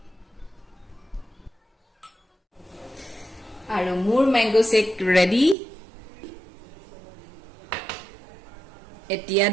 আৰু মোৰ ম্যাঙ্গো শেক ৰেডি। এতিয়া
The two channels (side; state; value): left; drops out; at 5.6 s